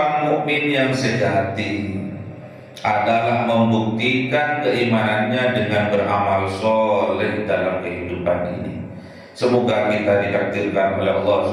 mukmin yang sejati adalah membuktikan keimanannya dengan beramal soleh dalam kehidupan ini. Semoga kita ditakdirkan oleh Allah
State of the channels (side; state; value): both; identical; correlation 1.00